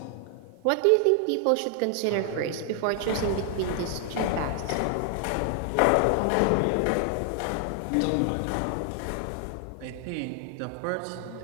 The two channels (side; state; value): both; different; correlation 0.00